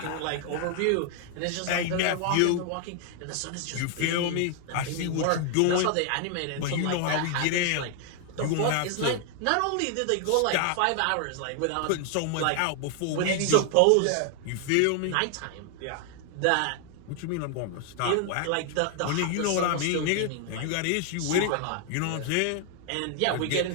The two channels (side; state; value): both; different; correlation 0.00